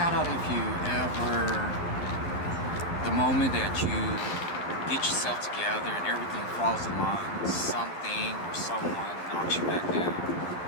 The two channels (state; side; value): late; right; 11 ms